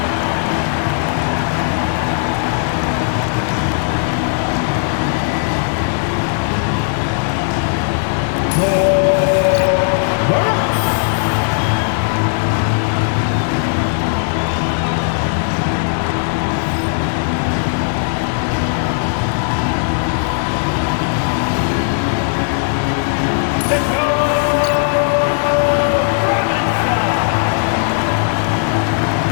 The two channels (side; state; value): right; silent; 68 dB below the other